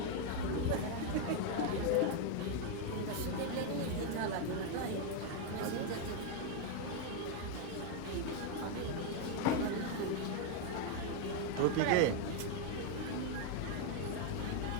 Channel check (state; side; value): different; both; correlation 0.01